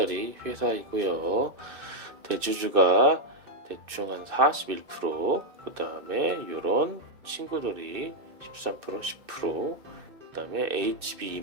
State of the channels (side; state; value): left; late; 2.6 ms